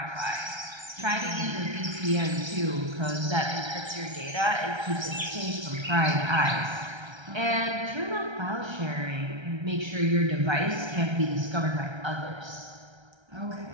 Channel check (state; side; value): late; left; 1.3 ms